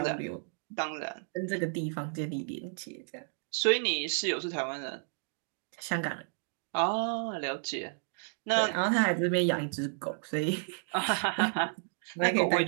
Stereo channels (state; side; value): silent; left; 56 dB below the other